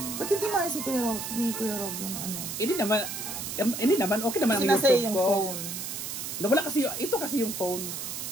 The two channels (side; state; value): right; noise; hiss, 6 dB below the sound